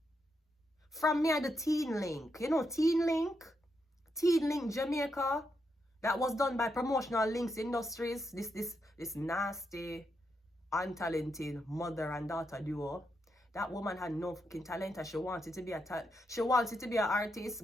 From me the Teen Link. You know Teen Link? Teen Link Jamaica. That was done by Promotional Links Industries. This nasty, untalented mother and daughter duo. That woman had no fucking talent and she wanted to be an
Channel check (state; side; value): normal; both; correlation 0.82